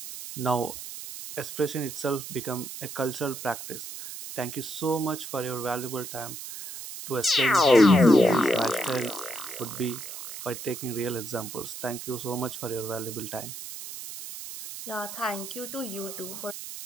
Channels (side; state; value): right; noise; hiss, 10 dB below the sound